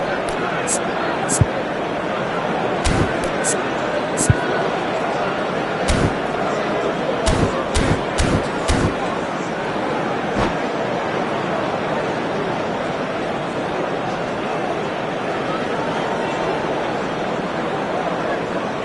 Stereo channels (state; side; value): identical; both; correlation 1.00